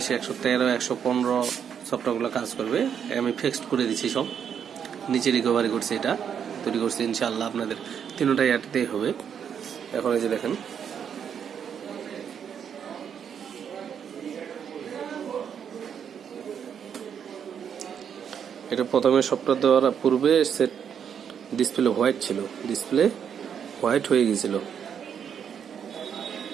113 115 সফটওয়্যারগুলো কাজ করবে। আমি ফিক্সড করে দিচ্ছি, সব নিচে রিকভারি করছি, এটা তৈরি করছি। ইনশাআল্লাহ আপনাদের তিনটাই এটাতেই হবে। এখন এই যে দেখেন, এটা প্রথমে সফটওয়্যার দেওয়ার পূর্বে সেট ডিসপ্লে হোয়াইট ছিল, ডিসপ্লে হোয়াইট হয়ে গেছিল।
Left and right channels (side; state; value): left; quieter; 7.9 dB